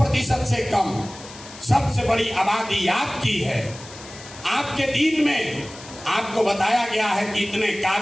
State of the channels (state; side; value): noise; left; hiss, 17 dB below the sound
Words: से कम। सबसे बड़ी आबादी आपकी है। आपके दीन में आपको बताया गया है कि इतने